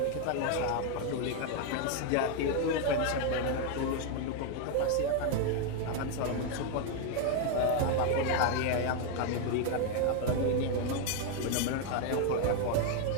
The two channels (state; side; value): different; both; correlation 0.01